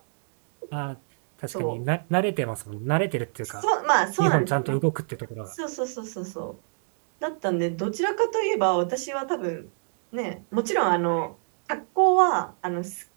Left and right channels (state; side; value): silent; left; digital silence